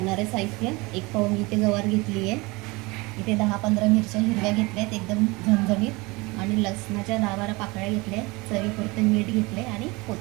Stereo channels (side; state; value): left; quieter; 24.5 dB